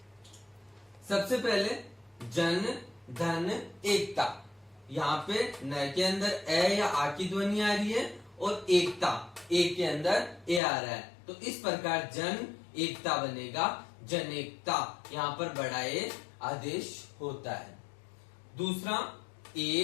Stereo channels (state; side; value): drops out; right; at 10.6 s